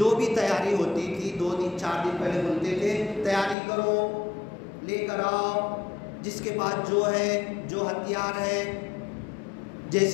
بھی تیاری ہوتی تھی 2 دن 4 دن پہلے بولتے تھے تیاری کرو، لے کر آؤ، جس کے پاس جو ہے، جو ہتھیار ہے،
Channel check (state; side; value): drops out; right; at 3.6 s